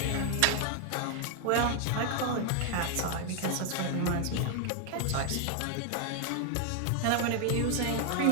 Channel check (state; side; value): different; both; correlation 0.00